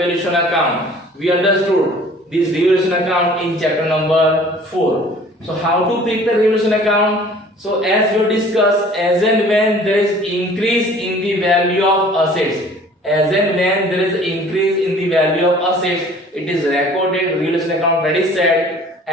account. We understood this revaluation account in chapter number 4. So how to prepare revaluation account? So as we discussed, as and when there is increase in the value of assets, as and when there is increase in the value of assets, it is recorded revaluation account credit side,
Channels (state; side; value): normal; both; correlation 0.50